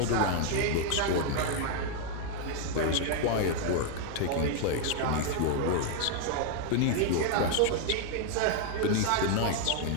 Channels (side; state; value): both; different; correlation 0.00